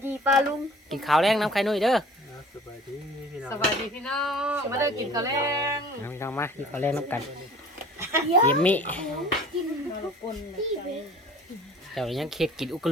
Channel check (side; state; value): both; normal; correlation 0.47